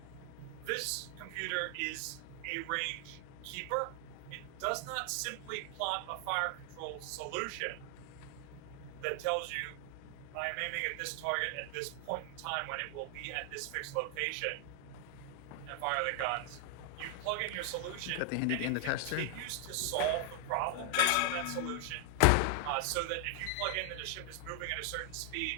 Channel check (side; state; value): both; different; correlation 0.00